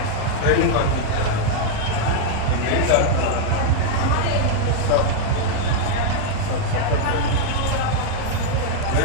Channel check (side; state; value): both; different; correlation 0.00